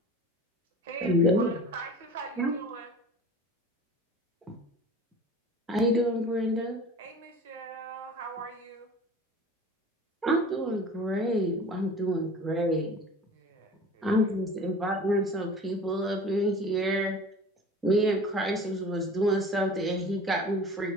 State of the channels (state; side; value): normal; both; correlation 0.41